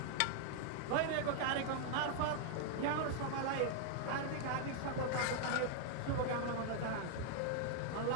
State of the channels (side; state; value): both; different; correlation 0.00